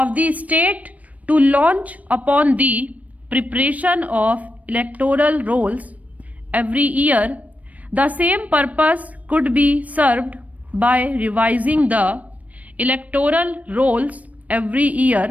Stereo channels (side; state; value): left; late; 0.070 ms